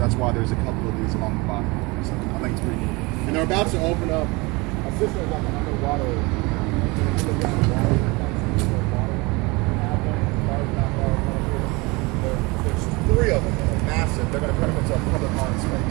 why there's a couple of these along the bayou. So I think it's pretty neat. And they're about to open up a cistern like an underwater. There's 3 of them, they're massive. They're going to put them into a public art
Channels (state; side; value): quieter; left; 25.4 dB